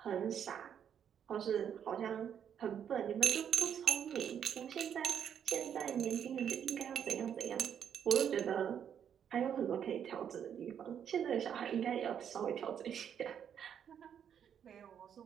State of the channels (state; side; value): quieter; left; 8.6 dB